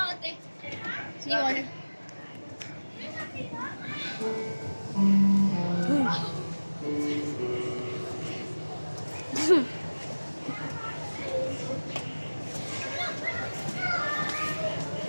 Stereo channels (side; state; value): both; inverted; correlation -1.00